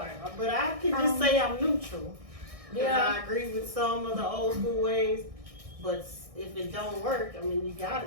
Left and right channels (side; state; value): left; late; 1.6 ms